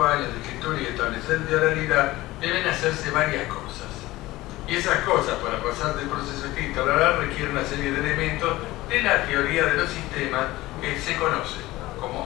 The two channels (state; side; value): quieter; right; 18.1 dB